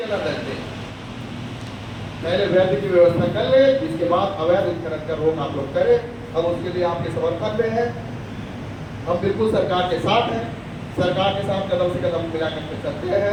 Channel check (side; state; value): both; identical; correlation 1.00